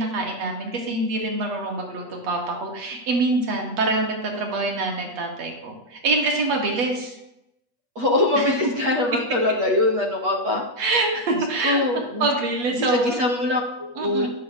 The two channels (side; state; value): left; late; 8.3 ms